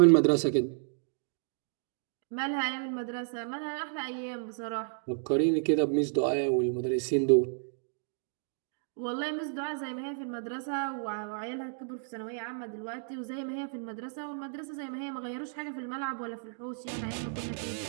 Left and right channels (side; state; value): left; silent; digital silence